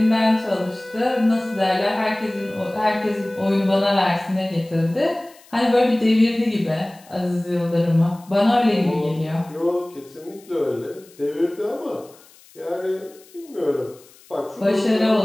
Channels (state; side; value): noise; left; hiss, 26 dB below the sound